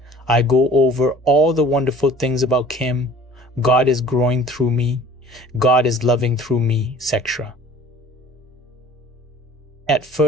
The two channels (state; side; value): normal; both; correlation 0.48